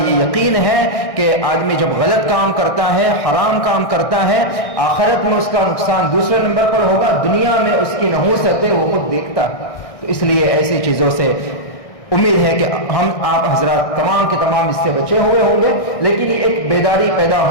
یہ یقین ہے کہ آدمی جب غلط کام کرتا ہے، حرام کام کرتا ہے، آخرت میں اس کا نقصان دوسرے نمبر پر ہوگا، دنیا میں اس کی نحوست ہے وہ خود دیکھتا ہے۔ تو اس لیے ایسی چیزوں سے امید ہے کہ ہم آپ حضرات تمام کے تمام اس سے بچے ہوئے ہوں گے، لیکن یہ ایک بیداری پیدا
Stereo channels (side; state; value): right; late; 1.6 ms